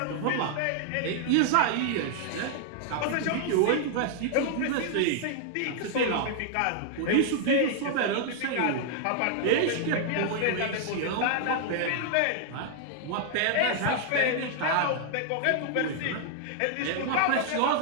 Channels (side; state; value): both; different; correlation -0.01